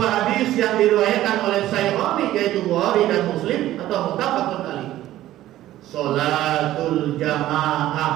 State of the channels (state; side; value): quieter; left; 14.2 dB